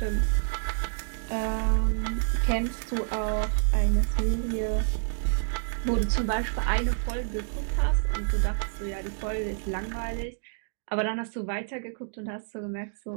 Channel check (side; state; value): left; silent; digital silence